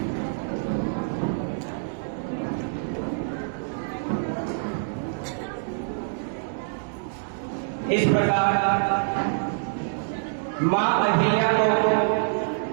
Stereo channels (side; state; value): left; silent; digital silence